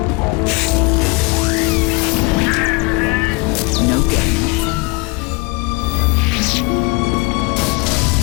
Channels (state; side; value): quieter; right; 27.8 dB